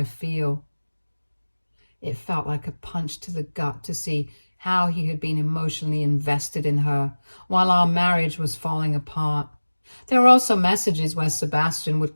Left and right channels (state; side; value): inverted; both; correlation -1.00